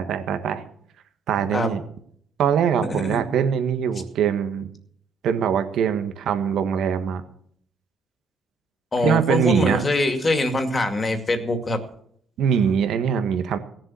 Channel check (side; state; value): left; quieter; 4.3 dB